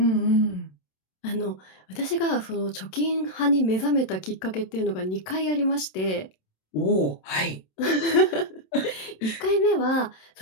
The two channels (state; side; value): late; right; 27 ms